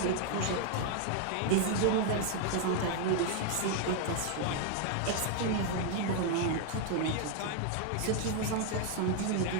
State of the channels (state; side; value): different; both; correlation 0.01